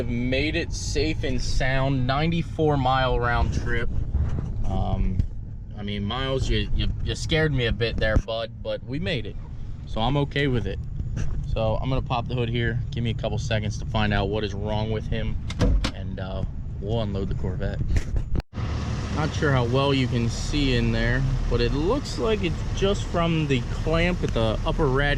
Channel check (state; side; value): identical; both; correlation 1.00